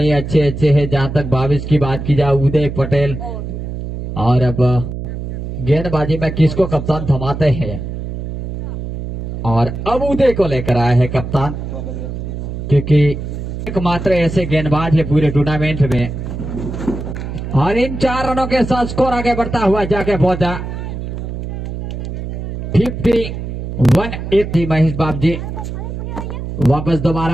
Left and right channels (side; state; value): right; noise; hum, 6 dB below the sound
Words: अच्छे अच्छे हैं। जहां तक भाविश की बात की जाए, उदय पटेल। और अब गेंदबाजी में किसको कप्तान थमाते हैं, और अब उदय को लेकर आया है कप्तान, क्योंकि एकमात्र ऐसे गेंदबाज है पूरे टूर्नामेंट में। और इन 4 रनों के साथ स्कोर आगे बढ़ता हुआ जाके पहुंचा 51-80। महेश बाब जी वापस